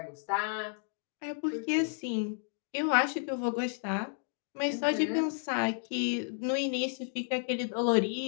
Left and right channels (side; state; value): right; silent; digital silence